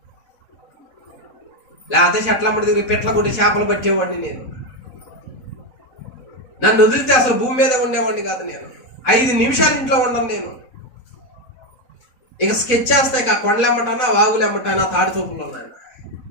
లేకపోతే చెట్లమ్మడి దగ్గర పెట్ల కొట్టి చేపలు పట్టేవాడిని నేను. నన్ను వదిలితే అసలు భూమి మీద ఉండేవాడిని కాదు. నేను 5 నిమిషాలు ఇంట్లో ఉండను. నేను ఇక స్కెచ్ చేస్తాయి. ఇక కొండలు ఎమ్మటానా, వాగులు ఎమ్మటానా, తాడి చూపులు ఉన్నాను.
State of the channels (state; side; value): late; right; 4.0 ms